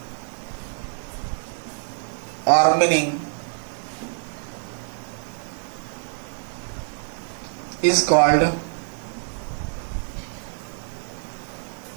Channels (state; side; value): silent; left; 59 dB below the other